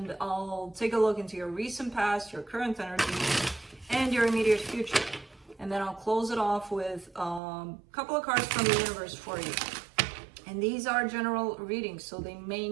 I'll take a look into your recent past, your current energy, and your immediate future. And then I'll close it off with a couple of cards from the universe for you. And these are general readings, so they may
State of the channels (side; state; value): left; drops out; at 7.4 s